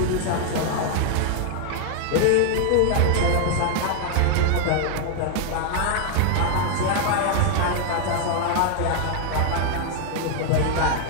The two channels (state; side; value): different; both; correlation 0.00